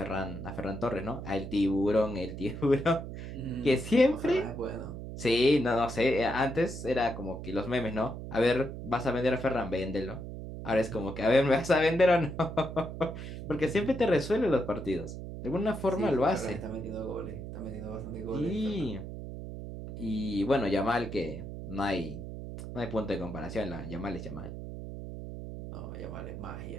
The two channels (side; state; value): right; noise; hum, 9 dB below the sound